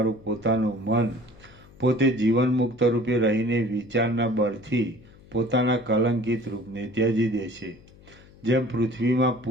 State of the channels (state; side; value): noise; left; hum, 24 dB below the sound